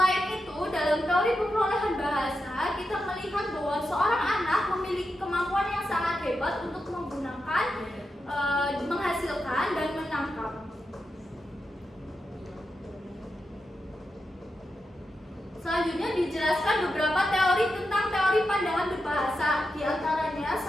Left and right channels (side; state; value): both; normal; correlation 0.88